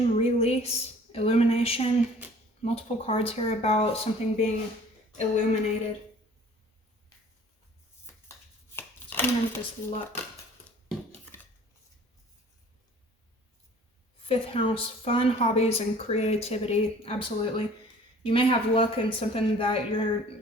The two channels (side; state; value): both; normal; correlation 0.50